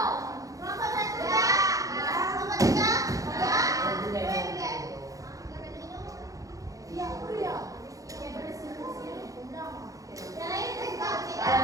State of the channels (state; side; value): late; left; 0.16 ms